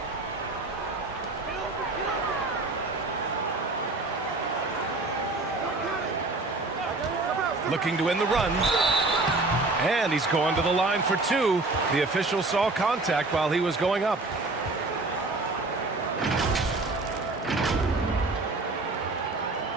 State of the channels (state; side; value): quieter; left; 3.2 dB